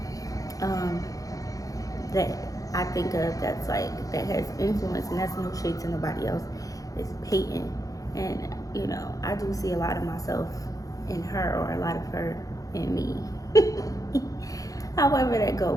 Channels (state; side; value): late; right; 0.17 ms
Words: that I think of that's like, that has influence, and that's no shade to nobody else, is Peyton. And, you know, I do see a lot of myself in her, or a lot of her in me. However that go,